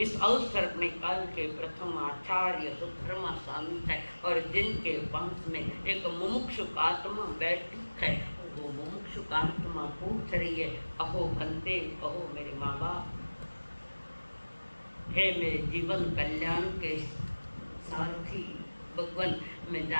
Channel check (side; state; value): both; inverted; correlation -1.00